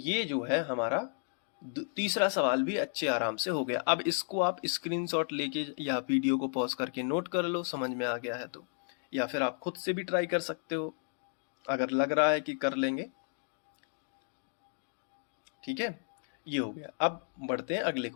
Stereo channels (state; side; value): silent; right; 56 dB below the other